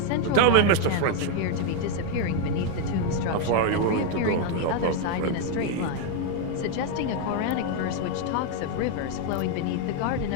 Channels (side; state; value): both; different; correlation 0.01